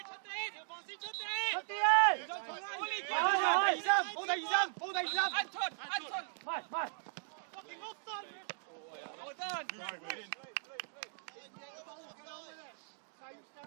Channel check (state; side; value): silent; left; digital silence